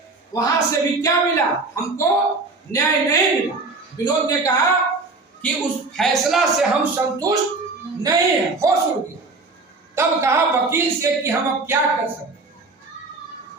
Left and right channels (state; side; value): quieter; left; 3.6 dB